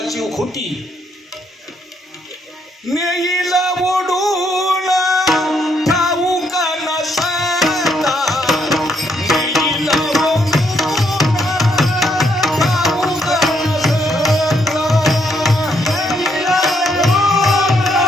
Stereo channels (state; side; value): normal; both; correlation 0.74